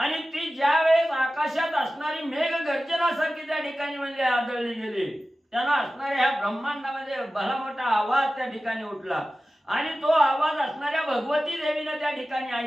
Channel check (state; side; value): normal; both; correlation 0.95